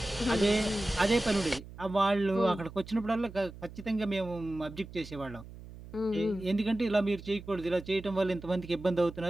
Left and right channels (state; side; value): noise; right; hum, 16 dB below the sound